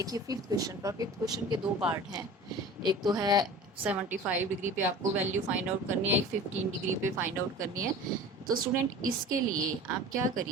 फिफ्थ क्वेश्चन पर, फिफ्थ क्वेश्चन के दो पार्ट हैं। एक तो है 75 डिग्री पे आपको वैल्यू फाइंड आउट करनी है, एक 15 डिग्री पे फाइंड आउट करनी है। तो स्टूडेंट इसके लिए आप क्या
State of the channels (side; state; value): both; normal; correlation 0.39